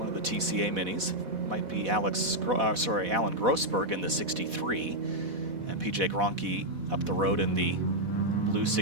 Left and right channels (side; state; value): left; late; 4.1 ms